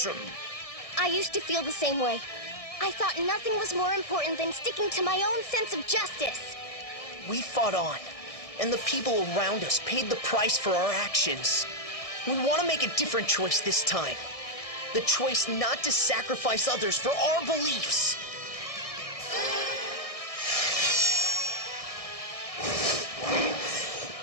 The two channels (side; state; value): right; late; 1.6 ms